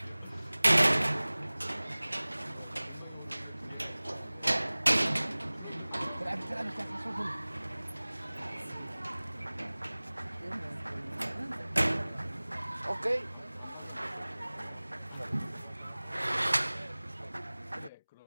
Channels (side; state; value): both; inverted; correlation -1.00